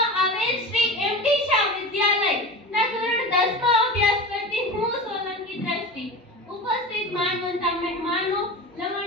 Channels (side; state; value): both; normal; correlation 0.30